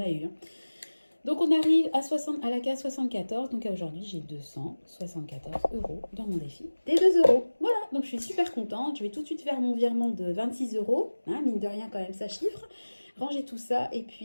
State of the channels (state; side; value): inverted; both; correlation -1.00